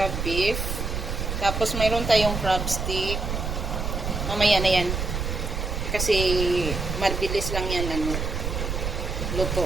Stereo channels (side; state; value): right; noise; rumble, 3 dB below the sound